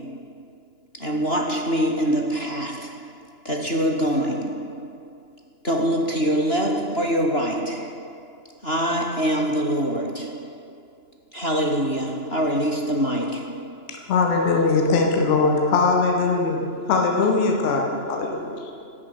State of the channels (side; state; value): right; late; 2.9 ms